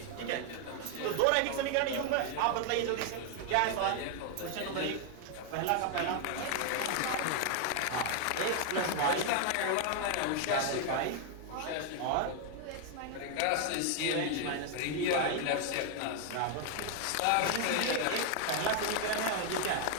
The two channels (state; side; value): different; both; correlation 0.00